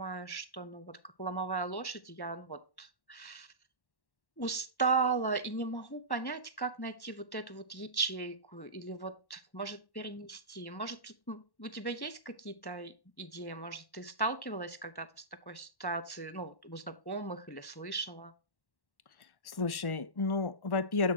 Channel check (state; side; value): late; right; 1.1 ms